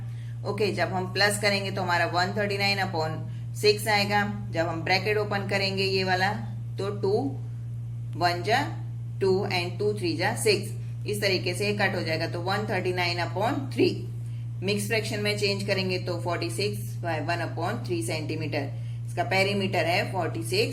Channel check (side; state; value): both; identical; correlation 1.00